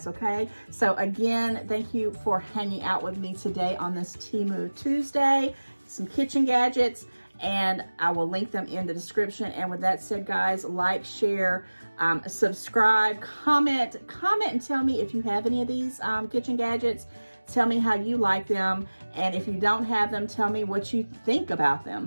okay? So again, thank you for hanging out with me today on this Temu Tuesday, some kitchen gadgets, and I will link them in the description. And with that said, guys, like, share, subscribe, comment and tell me if you have any of these kitchen gadgets. Tell me how you like them, and if you don't have them, tell me what you think about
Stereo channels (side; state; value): both; inverted; correlation -1.00